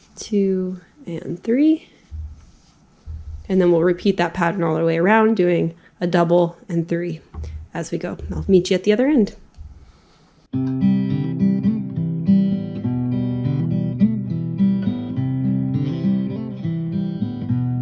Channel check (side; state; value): both; identical; correlation 1.00